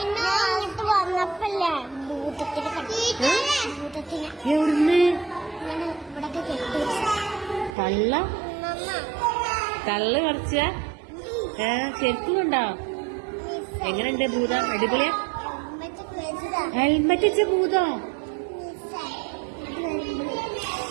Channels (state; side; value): drops out; left; at 7.8 s